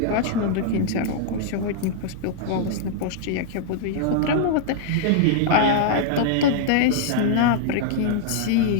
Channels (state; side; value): different; both; correlation -0.01